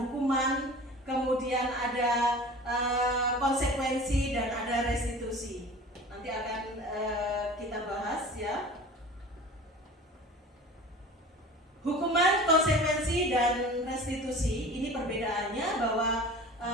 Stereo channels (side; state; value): both; normal; correlation 0.39